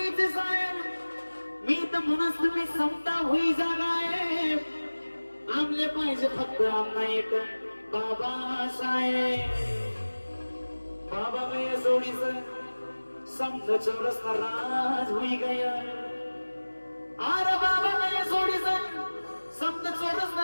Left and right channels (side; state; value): both; inverted; correlation -1.00